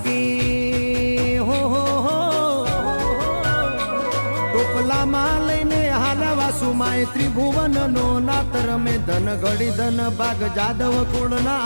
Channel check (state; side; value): inverted; both; correlation -1.00